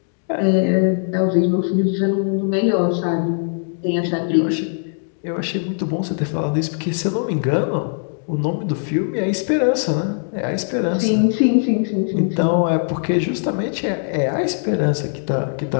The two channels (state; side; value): silent; right; digital silence